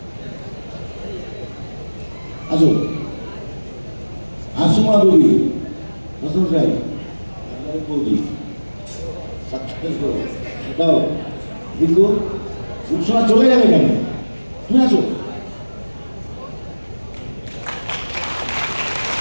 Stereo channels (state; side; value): inverted; both; correlation -1.00